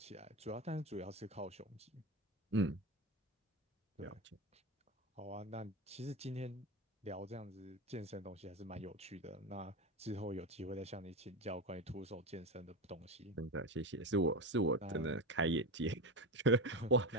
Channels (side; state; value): both; normal; correlation 0.18